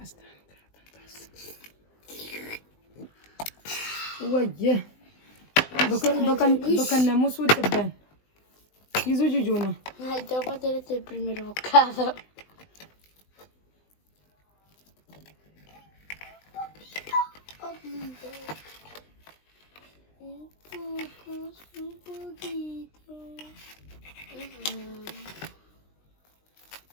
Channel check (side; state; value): right; late; 20 ms